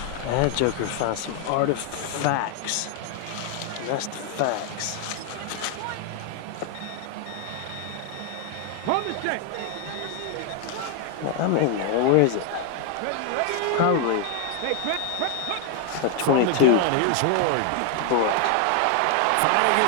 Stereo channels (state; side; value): different; both; correlation 0.00